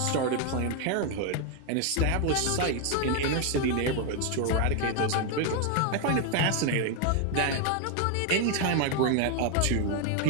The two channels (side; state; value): both; different; correlation 0.01